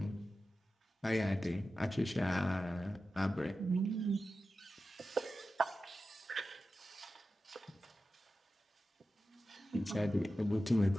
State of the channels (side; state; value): both; normal; correlation 0.93